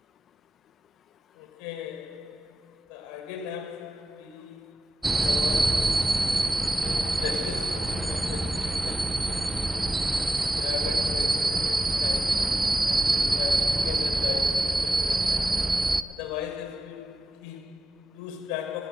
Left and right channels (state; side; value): normal; both; correlation 0.90